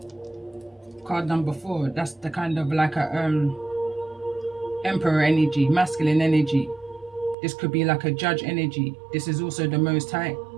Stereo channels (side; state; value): left; drops out; at 7.4 s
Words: Card number 4, that's the kind of like a emperor energy, masculine energy. This could be like a judge energy. This is also the Most High.